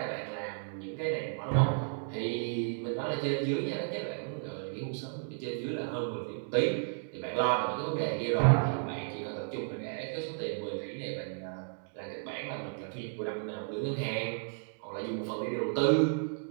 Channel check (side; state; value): left; silent; digital silence